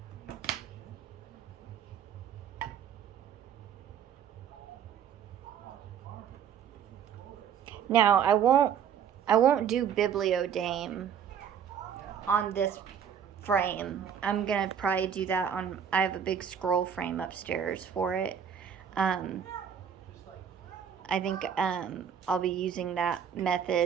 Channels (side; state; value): left; quieter; 8.1 dB